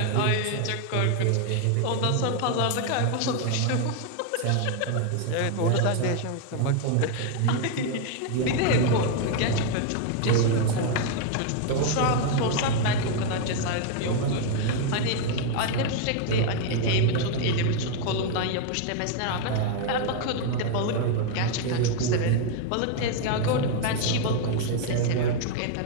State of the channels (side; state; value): both; different; correlation 0.01